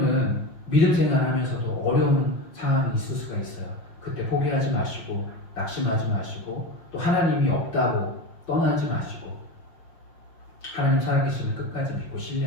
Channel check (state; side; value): late; right; 6.0 ms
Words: 믿음 생활하면서도 어려운 상황이 있을 수가 있어요. 그때 포기하지 마시고 낙심하지 마시고 또 하나님이 없다고 떠나지 마시고 하나님 살아계심을 끝까지 믿고